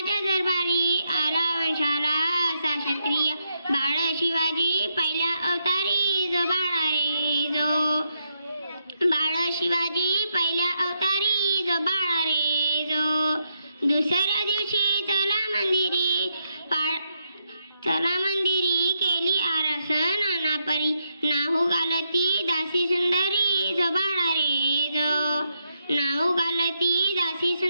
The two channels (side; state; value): both; inverted; correlation -0.80